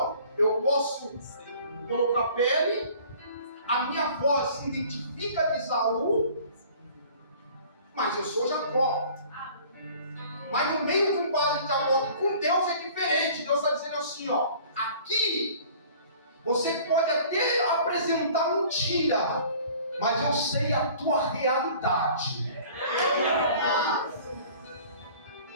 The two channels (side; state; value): both; inverted; correlation -0.49